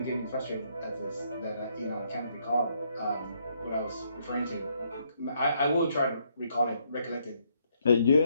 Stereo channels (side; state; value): both; inverted; correlation -0.73